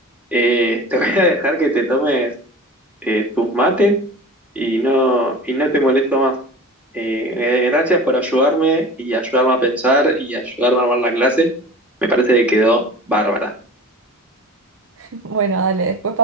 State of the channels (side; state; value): both; normal; correlation 0.37